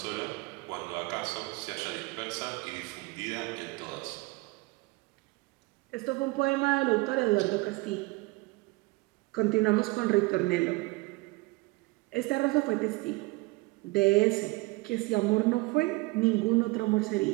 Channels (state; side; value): quieter; left; 23.9 dB